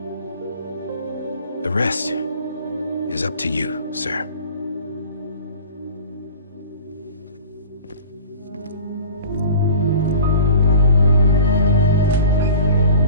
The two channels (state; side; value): inverted; both; correlation -0.42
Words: The rest is up to you, sir.